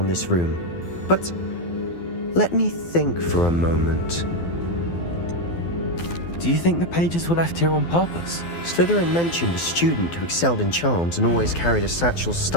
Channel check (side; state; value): right; late; 12 ms